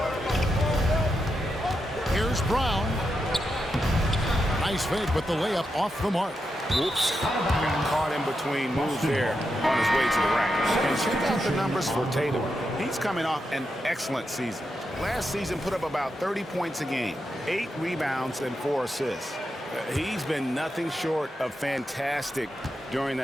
Here's Brown. Nice fake with the layup off the mark. Whoops. Got caught in between moves there on his way to the rack. And check out the numbers for Tatum. He's coming off an excellent season. Last season put up about 30 points a game, 8 rebounds, and 4 assists. He's been nothing short of fantastic during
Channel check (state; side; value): normal; both; correlation 0.86